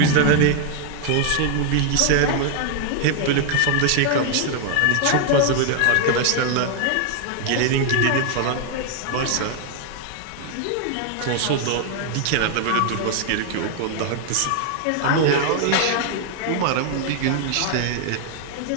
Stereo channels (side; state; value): both; different; correlation 0.00